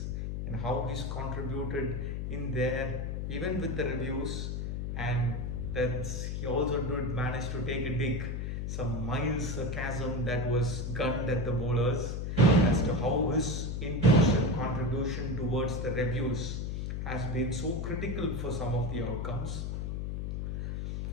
and how he's contributed in there, even with the reviews, and that he also did manage to take a dig, some mild sarcasm that was gunned at the bowlers as to how his input and contribution towards the reviews has been so critical for some of the outcomes.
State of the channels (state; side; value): noise; left; hum, 2 dB below the sound